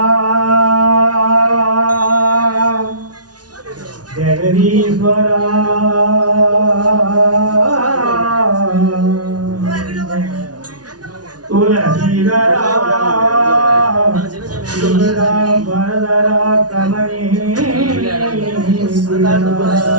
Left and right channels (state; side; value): late; left; 0.69 ms